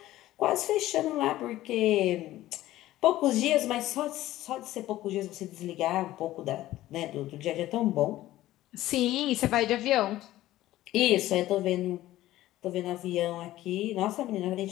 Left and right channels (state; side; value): quieter; right; 15.3 dB